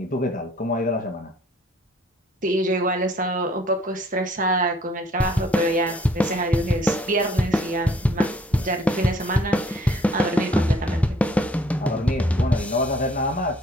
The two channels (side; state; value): both; normal; correlation 0.59